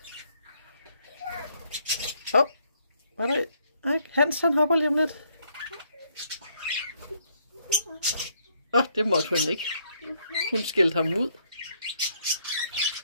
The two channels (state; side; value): inverted; both; correlation -0.70